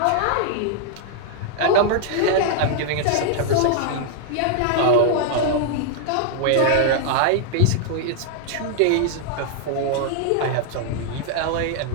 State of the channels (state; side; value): different; both; correlation 0.00